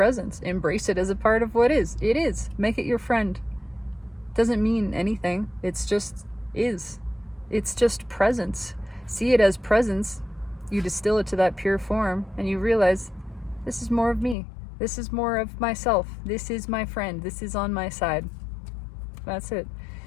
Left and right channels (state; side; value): drops out; right; at 14.4 s